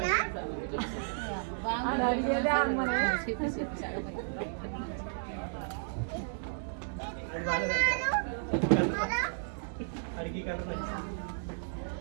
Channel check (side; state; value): left; silent; digital silence